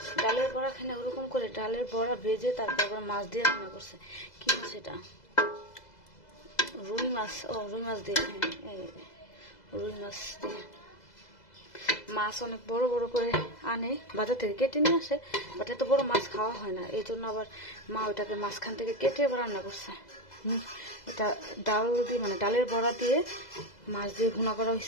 ডালের বড়া খাই না, ওরকম করে ডালের বড়া ভেজে তারপর মাছ দিয়ে রান্না করছে। কি মাছ এটা? রুই মাছ। ও রুই মাছ দিয়ে, হ্যাঁ রুই মাছ দিয়ে। মাছ অনেক বড় বড় করে আনে বাজার থেকে, কেটে নিয়ে আসে, বাট এত বড় মাছ খাওয়া হয় না, এই জন্য আবার মা ওটাকে মাঝখান থেকে কেটে এবার রান্না করছে। এটা ডাল দিয়ে, মানে ডালের বড়া দিয়ে মাছ দিয়ে ভুনা করা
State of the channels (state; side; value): late; right; 2.0 ms